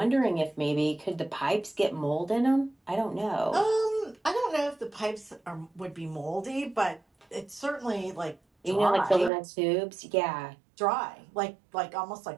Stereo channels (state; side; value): drops out; left; at 9.3 s